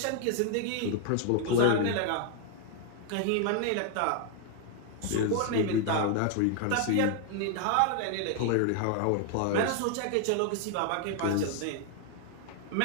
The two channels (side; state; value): both; different; correlation 0.00